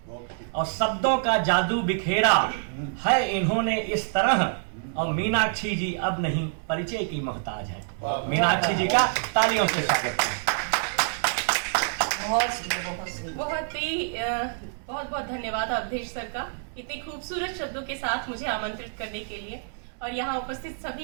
और शब्दों का जादू बिखेरा है इन्होंने इस तरह। और मीनाक्षी जी अब नहीं परिचय की मोहताज है। मीनाक्षी जी का तालियों से स्वागत है। बहुत बहुत धन्यवाद अवधेश सर का, इतने खूबसूरत शब्दों के साथ मुझे आमंत्रित करने के लिए। और यहाँ उपस्थित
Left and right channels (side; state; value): left; silent; digital silence